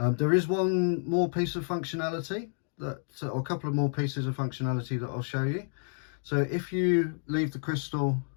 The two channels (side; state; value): right; silent; digital silence